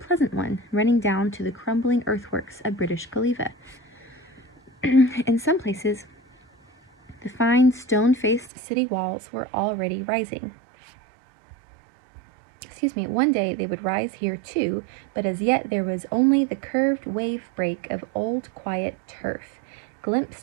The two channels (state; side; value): drops out; left; at 8.5 s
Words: one, running down to the crumbling earthworks of British Galeva. In some places, the fine stone-faced city walls were already rising. One day they would rise here too, but as yet there was only the curved wave break of old quiet turf,